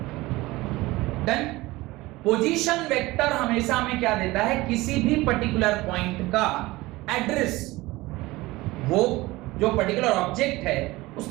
डन? पोजीशन वेक्टर हमेशा हमें क्या देता है? किसी भी पर्टिकुलर पॉइंट का एड्रेस, वो जो पर्टिकुलर ऑब्जेक्ट है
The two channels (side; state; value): left; quieter; 20.0 dB